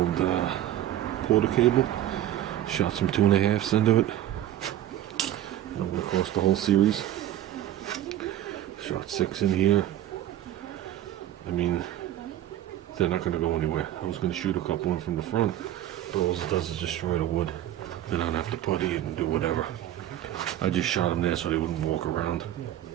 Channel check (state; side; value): quieter; left; 12.5 dB